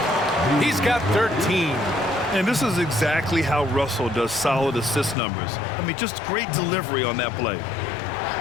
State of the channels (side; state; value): right; drops out; at 5.2 s